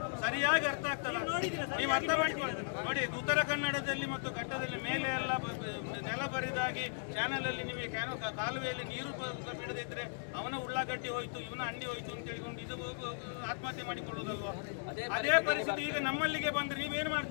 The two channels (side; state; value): right; silent; digital silence